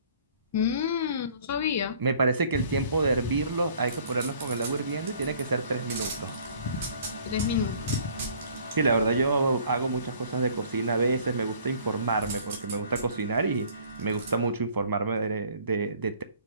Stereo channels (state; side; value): inverted; both; correlation -0.55